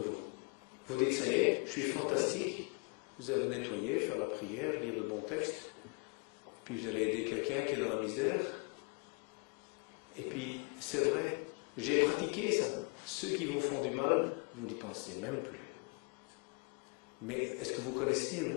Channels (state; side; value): quieter; right; 34.4 dB